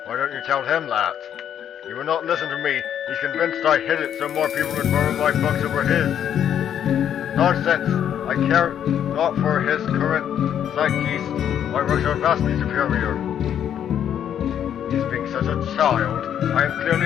Why don't you tell him that? He will not listen to me. He's convinced I hid it so more people would borrow my books over his. Nonsense. I care not for his current zeitgeist. My works are vastly superior. He's being such a child. I am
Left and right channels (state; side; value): quieter; right; 9.5 dB